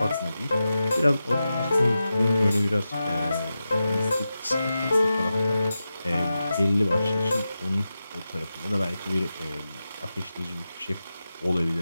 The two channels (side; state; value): both; inverted; correlation -0.92